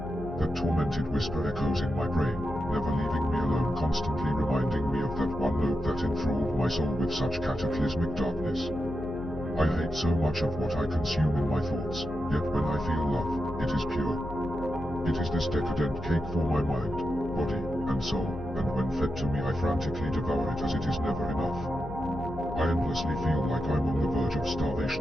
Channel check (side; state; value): left; noise; hum, 12 dB below the sound